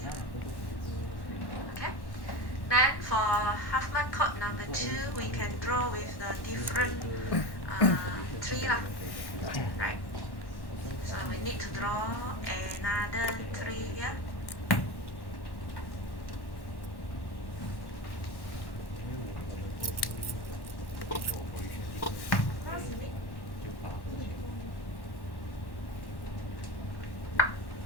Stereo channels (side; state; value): right; late; 1.1 ms